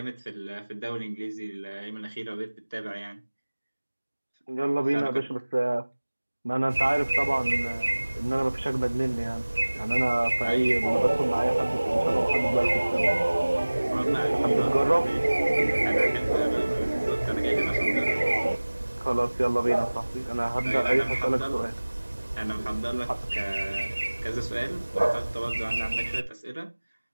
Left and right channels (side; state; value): both; inverted; correlation -1.00